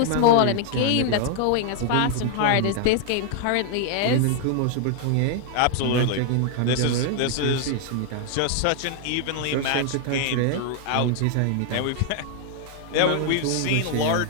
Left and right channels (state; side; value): different; both; correlation 0.00